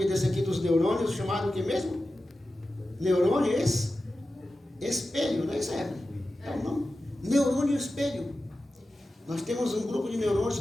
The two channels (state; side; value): normal; both; correlation 0.93